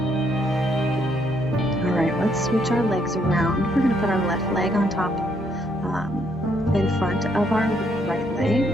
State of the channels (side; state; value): both; normal; correlation 0.72